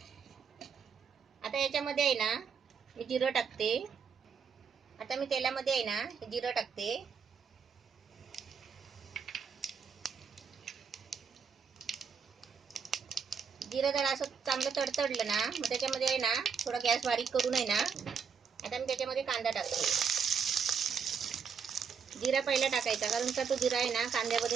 आता याच्यामध्ये आहे ना मी जिरं टाकते. आता मी तेलामध्ये आहे ना जिरं टाकते. जिरं जरा असं चांगलं तडतडलं ना, मग त्याच्यामध्ये आहे ना थोडा गॅस बारीक करून आहे ना आता मी त्याच्यामध्ये कांदा टाकते. जिरा पहिला टाकायचा, कारण का तो जिरा आहे ना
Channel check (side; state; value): left; quieter; 6.3 dB